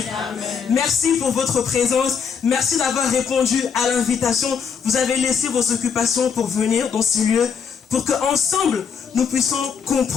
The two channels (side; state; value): right; quieter; 6.5 dB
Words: Merci pour votre présence. Merci d'avoir répondu à l'invitation. Vous avez laissé vos occupations pour venir dans ce lieu, pour qu'ensemble, nous puissions